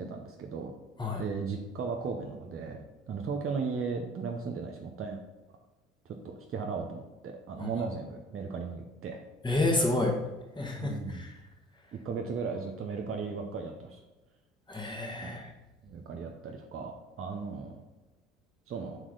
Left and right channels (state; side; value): normal; both; correlation 0.50